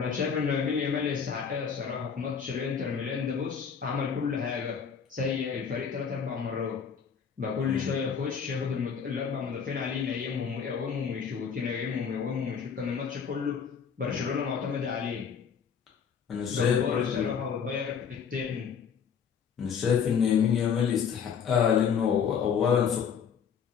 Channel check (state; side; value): quieter; right; 6.9 dB